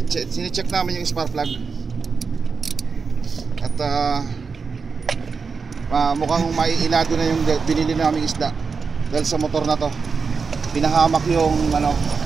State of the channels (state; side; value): quieter; left; 5.1 dB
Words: Sine-check namin yung spark plug. At mukhang maiilado na yung binili naming isda. Dahil sa motor na to pinahamak yung